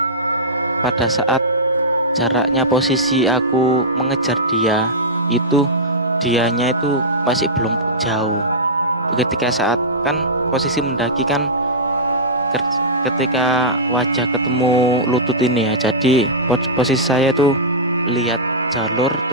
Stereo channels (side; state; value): both; normal; correlation -0.13